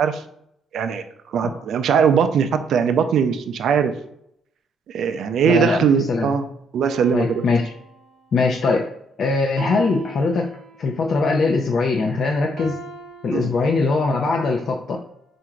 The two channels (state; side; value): normal; both; correlation 0.69